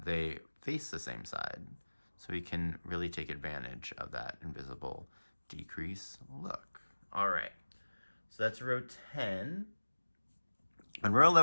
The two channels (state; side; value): inverted; both; correlation -1.00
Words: they face the same side. So we can really take advantage of that invisible decrease look. All right, so that's row 10. And row